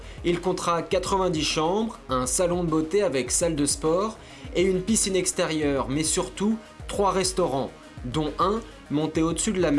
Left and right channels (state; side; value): identical; both; correlation 1.00